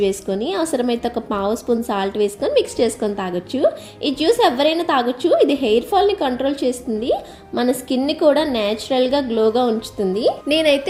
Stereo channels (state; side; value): identical; both; correlation 1.00